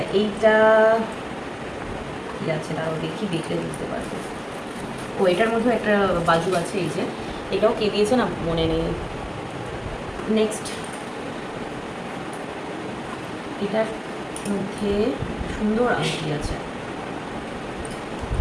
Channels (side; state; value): both; identical; correlation 1.00